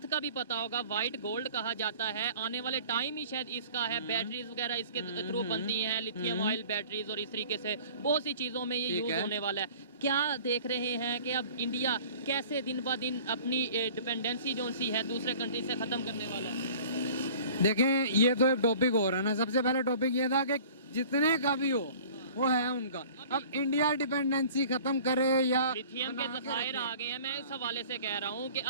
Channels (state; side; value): inverted; both; correlation -0.47